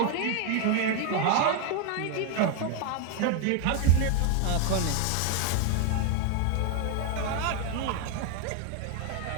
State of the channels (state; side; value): different; both; correlation 0.01